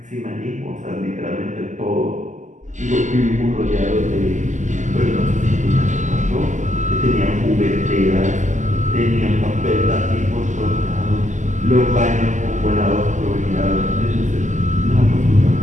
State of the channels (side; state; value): left; late; 0.36 ms